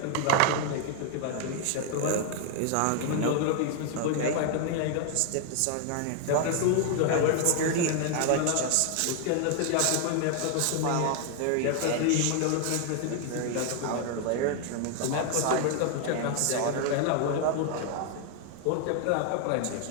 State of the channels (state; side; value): different; both; correlation 0.00